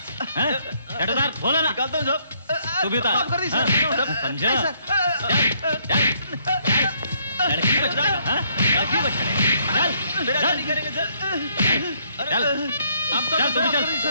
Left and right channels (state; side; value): inverted; both; correlation -0.69